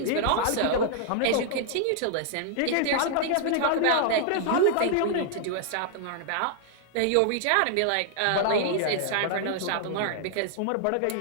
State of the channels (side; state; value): both; different; correlation -0.01